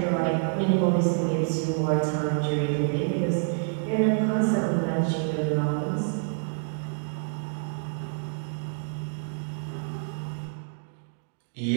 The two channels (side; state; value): left; silent; 60 dB below the other